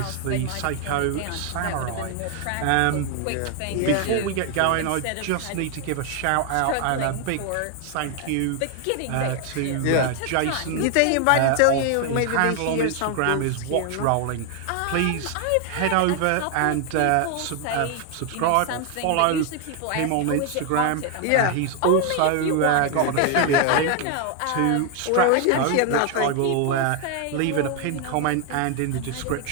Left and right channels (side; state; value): both; different; correlation 0.00